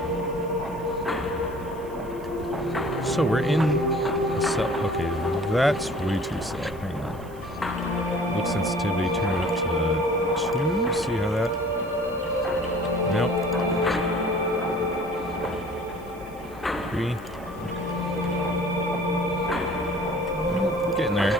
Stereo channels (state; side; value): noise; right; hiss, 26 dB below the sound